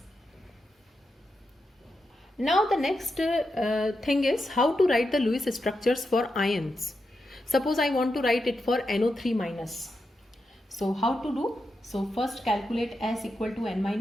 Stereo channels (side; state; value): both; normal; correlation 0.87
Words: Now the next thing is how to write the Lewis structures for ions. Suppose I want to write it for NO3 minus. So how to do? So first calculate S equal to N